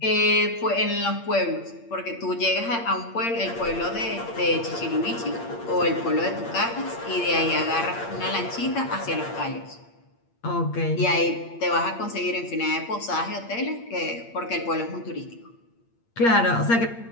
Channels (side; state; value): right; late; 8.6 ms